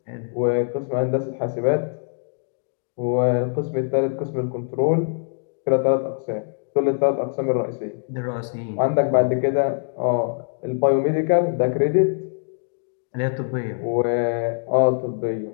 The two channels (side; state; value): right; silent; digital silence